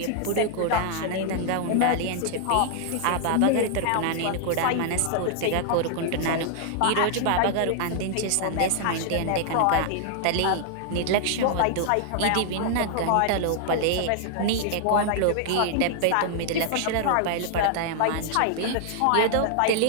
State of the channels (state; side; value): different; both; correlation 0.00